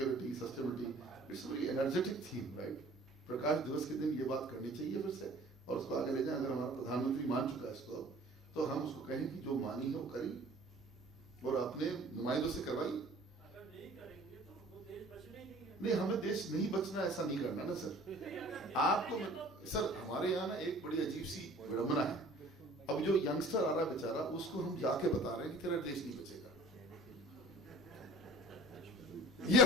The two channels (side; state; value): both; normal; correlation 0.48